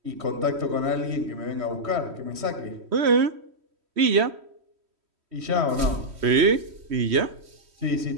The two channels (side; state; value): left; late; 3.1 ms